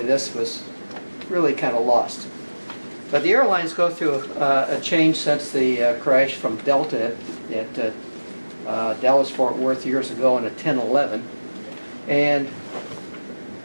was really kind of lost. But the airlines go through a change since the crash from Delta at Dallas-Fort Worth years ago in a 1011. And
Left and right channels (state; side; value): inverted; both; correlation -1.00